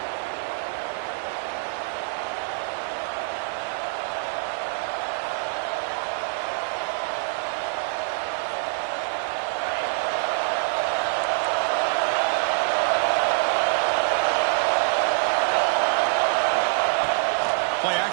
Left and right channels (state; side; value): silent; left; 62 dB below the other